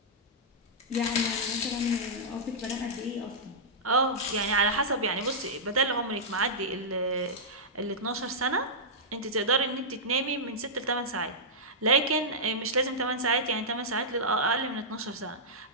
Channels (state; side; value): normal; both; correlation -0.11